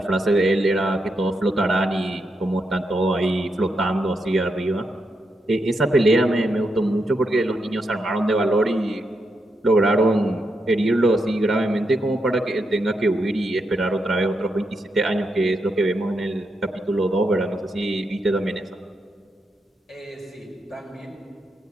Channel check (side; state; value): both; normal; correlation 0.83